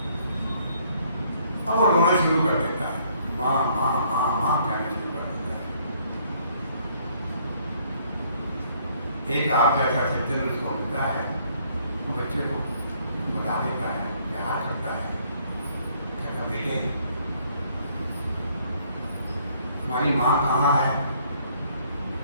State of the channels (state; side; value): inverted; both; correlation -0.65